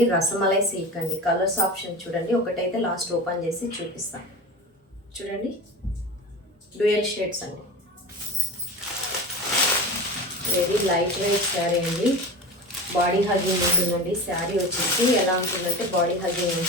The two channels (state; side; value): normal; both; correlation 0.30